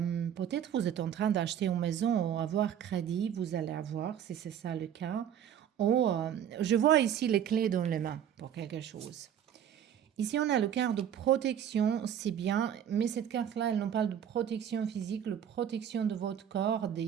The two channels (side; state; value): left; quieter; 9.4 dB